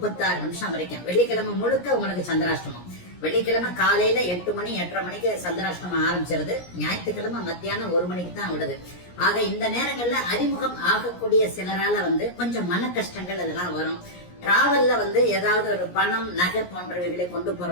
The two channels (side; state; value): right; late; 17 ms